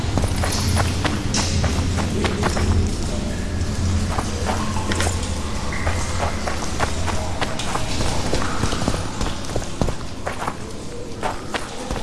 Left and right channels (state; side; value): identical; both; correlation 1.00